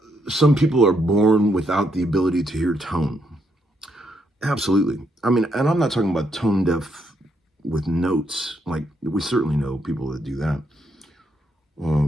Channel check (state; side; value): normal; both; correlation 0.76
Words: some people are born without the ability to hear tone? Absolutely. I mean, and I'm not talking about tone deaf with notes. Like, we certainly know people that do that.